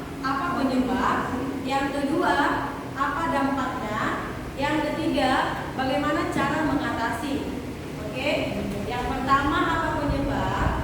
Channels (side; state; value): both; identical; correlation 1.00